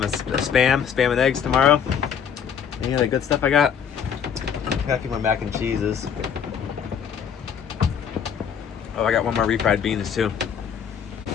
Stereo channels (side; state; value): right; quieter; 7.7 dB